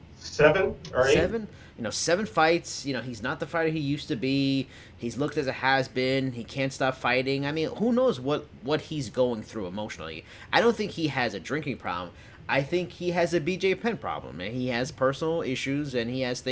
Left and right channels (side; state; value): both; identical; correlation 1.00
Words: 7 or 8? 7. 7 fights. He's not the fighter he used to be. He's looked as a has-been. He can't stop fighting. I mean, who knows what he's going through emotionally. I don't think he has a drinking problem. I think he has a BJ Penn problem, and he has personal issues, and he has